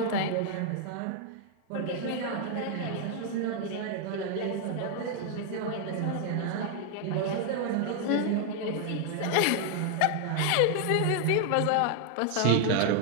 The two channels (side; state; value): both; different; correlation 0.00